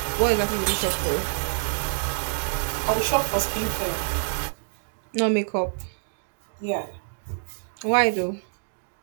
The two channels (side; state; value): left; silent; 57 dB below the other